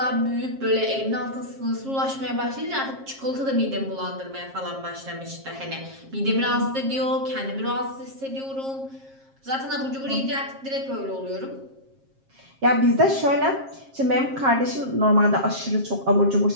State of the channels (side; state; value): left; late; 7.5 ms